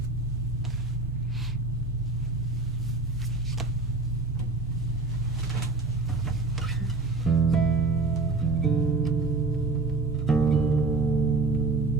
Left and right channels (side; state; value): left; quieter; 3.6 dB